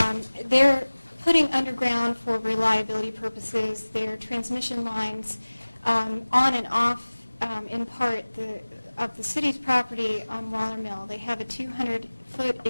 They're putting underground for reliability purposes their transmission lines on and off, in part, of the city's property on Waller Mill. They have a 200-foot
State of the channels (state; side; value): inverted; both; correlation -1.00